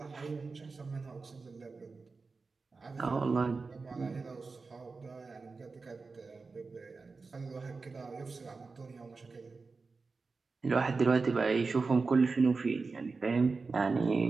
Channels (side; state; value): left; quieter; 4.2 dB